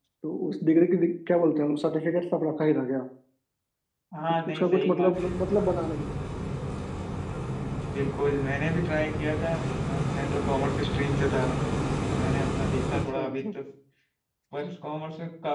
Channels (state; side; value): identical; both; correlation 1.00